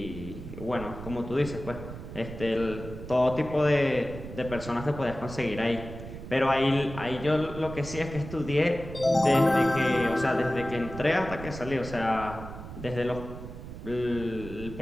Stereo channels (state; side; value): noise; right; rumble, 11 dB below the sound